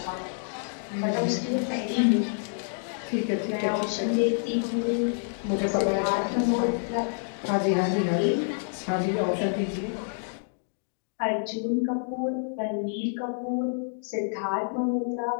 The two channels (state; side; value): silent; right; digital silence